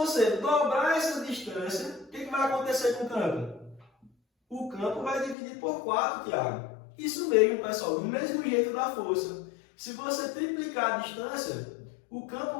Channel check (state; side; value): drops out; right; at 5.4 s